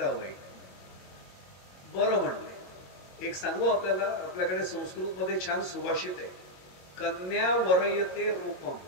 बरं म्हणले. एक सांगू आपल्याला, आपल्याकडे संस्कृत मध्ये छान सुभाषित आहे, कन्या वरयते रूपम.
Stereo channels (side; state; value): right; late; 22 ms